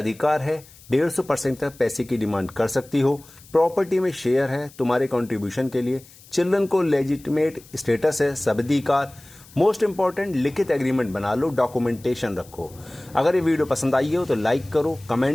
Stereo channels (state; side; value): noise; left; hiss, 23 dB below the sound